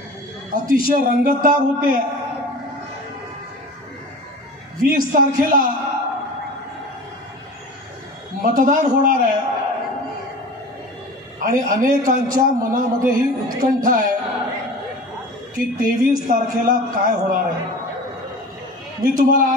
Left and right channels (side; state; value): both; normal; correlation 0.37